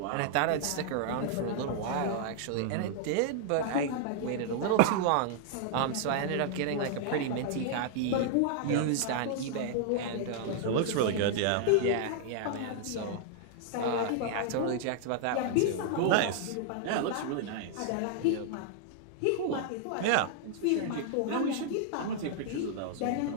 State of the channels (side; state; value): both; different; correlation -0.01